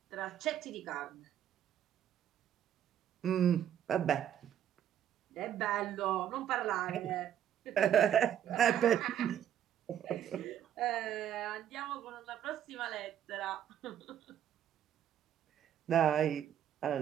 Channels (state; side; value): quieter; left; 10.3 dB